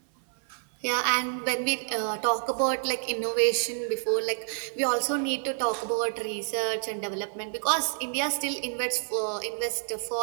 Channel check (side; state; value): left; silent; 57 dB below the other